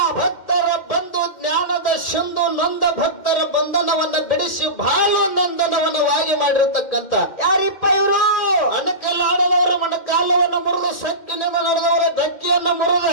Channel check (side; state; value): right; late; 2.1 ms